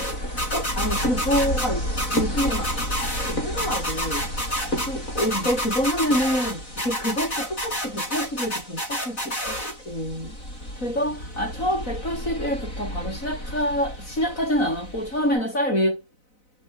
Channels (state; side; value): late; right; 4.0 ms